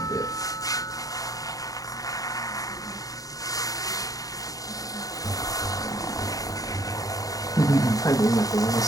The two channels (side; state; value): right; late; 0.17 ms